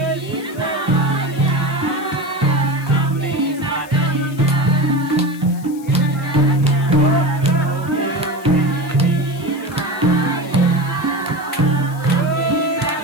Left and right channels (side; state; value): left; noise; hiss, 22 dB below the sound